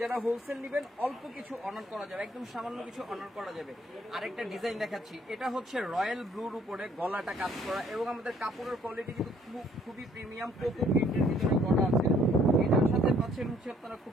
হোলসেল নেবেন অল্প কিছু অনার করা যাবে, একদম সামান্য কিছু অনার করা যাবে। আরেকটা ডিজাইন দেখাচ্ছি, এটা হচ্ছে রয়্যাল ব্লুর উপরে গলাটা কাজ করা, এবং আমাদের কাপড়ের কোয়ালিটি কিন্তু খুবই প্রিমিয়াম, কোকো প্রিন্টের ভিতরে করা আছে। এটার সাথে পাচ্ছেন হচ্ছে আপনারা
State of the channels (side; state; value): both; normal; correlation 0.62